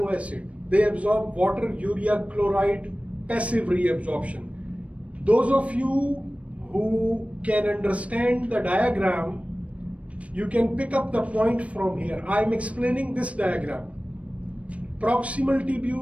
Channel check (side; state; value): left; late; 0.064 ms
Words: acid. They absorb water, urea, chloride, passive reabsorption. Those of you who can understand the diagram, you can pick up the point from here. I am explaining this diagram. Proximal